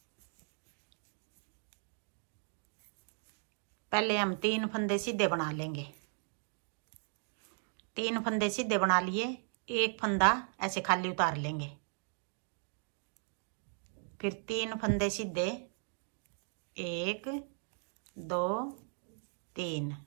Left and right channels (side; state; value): left; silent; 53 dB below the other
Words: पहले हम 3 फंदे सीधे बना लेंगे। 3 फंदे सीधे बना लिए, एक फंदा ऐसे खाली उतार लेंगे। फिर 3 फंदे सीधे, 1 2 3।